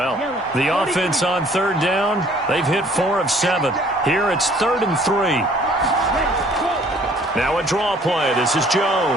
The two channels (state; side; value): normal; both; correlation 0.57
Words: The offense on 3rd down, they've hit 4 of 7. Here it's 3rd and 3. Now a draw play. This is